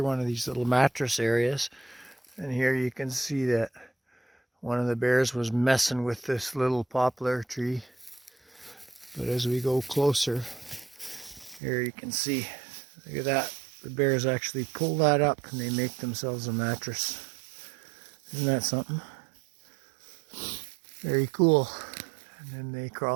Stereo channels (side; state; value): left; drops out; at 11.6 s